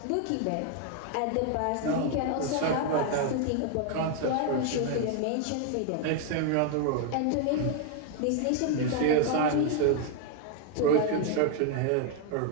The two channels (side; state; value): both; different; correlation 0.00